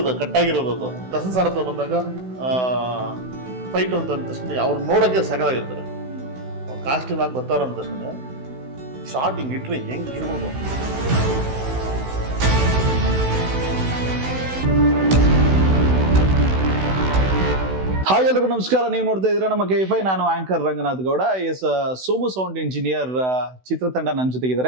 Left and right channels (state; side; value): late; left; 16 ms